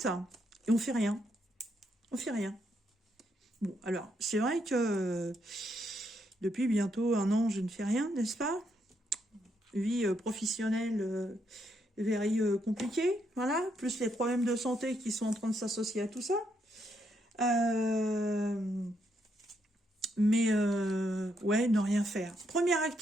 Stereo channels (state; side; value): normal; both; correlation 0.77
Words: et on fait rien. On fait rien. Bon, alors, c'est vrai que depuis bientôt 1 an, je ne fais rien, n'est-ce pas? Vie professionnelle very compliquée, voilà. Plus les problèmes de santé qui sont en train de s'associer à tout ça. Ouais, ne rien faire. Première